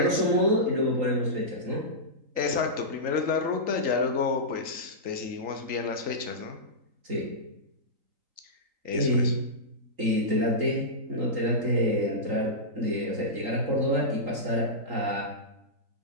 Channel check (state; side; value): late; left; 3.8 ms